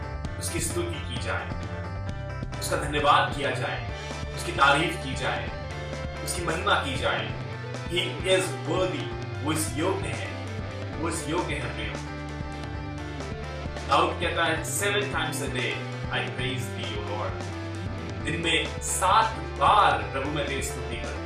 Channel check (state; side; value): identical; both; correlation 1.00